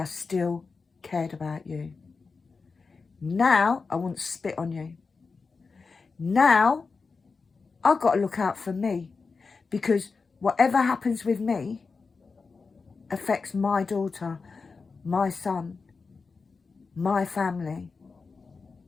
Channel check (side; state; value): right; quieter; 4.6 dB